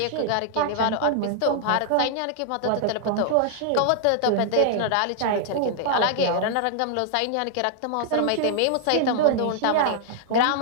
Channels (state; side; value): different; both; correlation -0.01